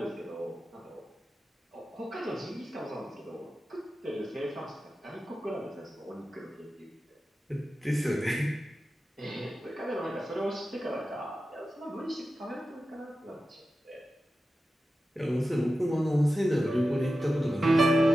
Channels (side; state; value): both; normal; correlation 0.92